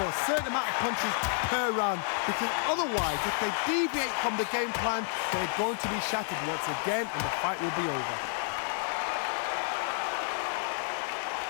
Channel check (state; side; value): silent; right; 58 dB below the other